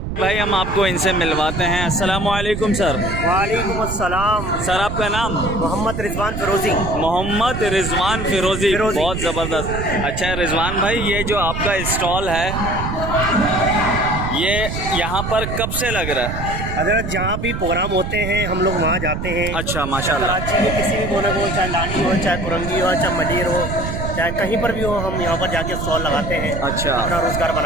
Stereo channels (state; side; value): noise; right; rumble, 5 dB below the sound